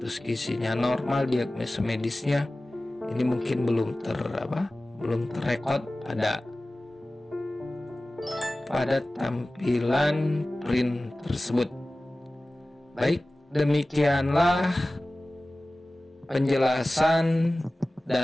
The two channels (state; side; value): normal; both; correlation 0.97